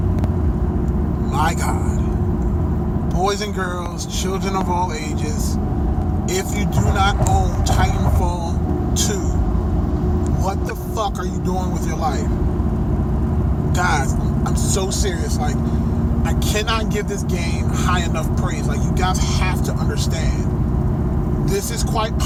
My God. Boys and girls, children of all ages, if you do not own Titanfall 2, what the fuck are you doing with your life? Guys, I'm so serious. Like, I cannot give this game high enough praise. Like, you guys have to understand, this is quite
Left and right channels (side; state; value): both; identical; correlation 1.00